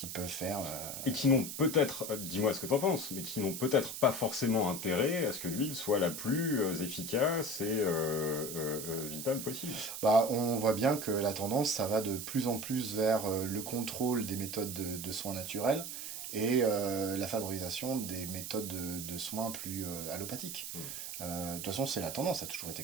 peuvent faire... Et qui n'ont peut-être, dis-moi ce que t'en penses, mais qui n'ont peut-être pas forcément intérêt à ce que l'huile soit la plus efficace et vitale possible. On voit bien que la tendance, ça va de plus en plus vers le contrôle des méthodes de soins naturels et la favorisation des méthodes de soins plus allopathiques. De toute façon, c'est la tendance, ça a toujours été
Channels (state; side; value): noise; right; hiss, 7 dB below the sound